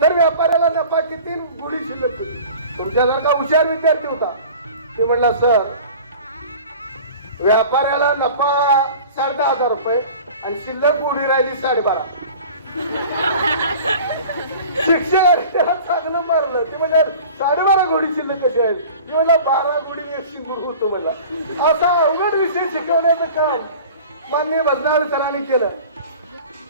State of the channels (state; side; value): inverted; both; correlation -0.42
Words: तर व्यापाऱ्याला नफा किती? घोडी शिल्लक होती. तुमच्यासारखा हुशार विद्यार्थी होता. ते म्हणला सर व्यापाऱ्याला नफा 10,500 रुपये आणि शिल्लक घोडी राहिली 12.5. शिक्षकाने चांगलं मारलं. ते म्हणजे 12.5 घोडी शिल्लक कशी आहेत? म्हणलं 12 घोडी 100 गुरु होतो मला. असा अवघड विषय शिकवण्याचं काम माननीय भजनाळ सरांनी केलं.